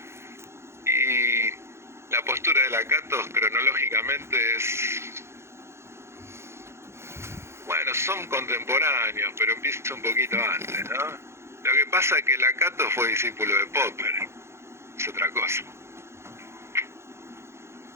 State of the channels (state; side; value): late; left; 0.13 ms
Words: Y la postura de Lakatos cronológicamente es... Bueno, son contemporáneos, pero empieza un poquito antes, ¿no? Lo que pasa es que Lakatos fue discípulo de Popper. Es otra cosa.